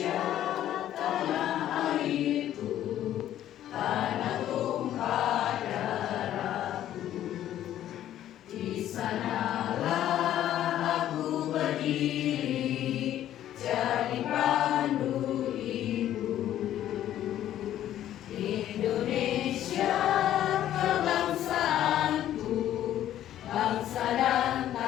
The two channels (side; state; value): right; quieter; 12.0 dB